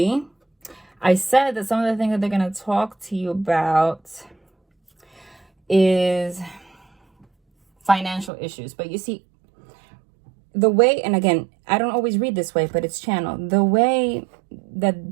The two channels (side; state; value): left; drops out; at 8.3 s